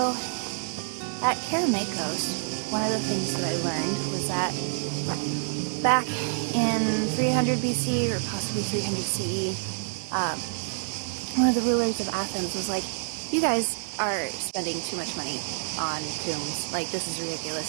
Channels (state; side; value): silent; left; digital silence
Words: at Kerameikos, one of the things that I learned was that back in 300 BC or possibly 300 CE, one of the rulers of Athens was like, you guys are spending too much money on tombs. Like, this is